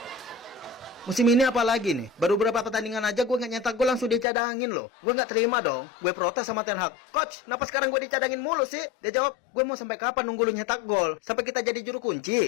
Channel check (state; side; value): drops out; right; at 4.2 s